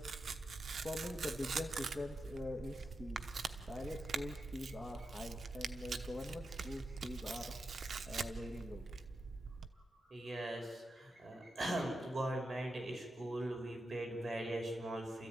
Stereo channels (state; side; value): normal; both; correlation 0.88